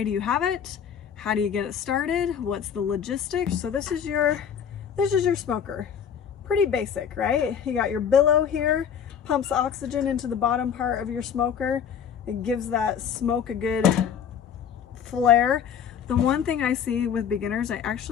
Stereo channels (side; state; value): right; quieter; 8.0 dB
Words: do you have it? How do you get it started? What's the logistics? So this is your smoker. Pretty basic, right? You got your billow here, pumps oxygen into the bottom part of your smoker. It gives that smoke a good flare. The one thing I see with beginners, I